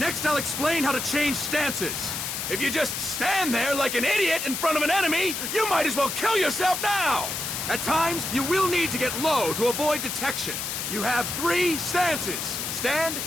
I'll explain how to change stances. If you just stand there like an idiot in front of an enemy, you might as well kill yourself now! At times, you will need to get low to avoid detection. You have 3 stances: stand,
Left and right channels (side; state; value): left; noise; hiss, 4 dB below the sound